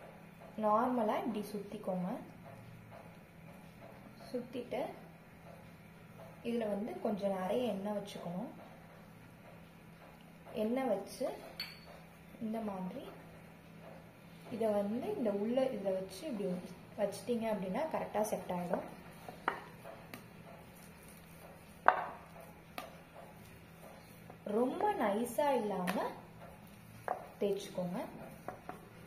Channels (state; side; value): identical; both; correlation 1.00